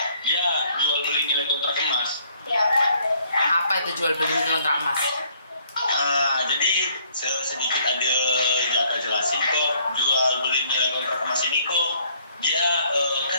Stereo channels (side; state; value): both; inverted; correlation -0.64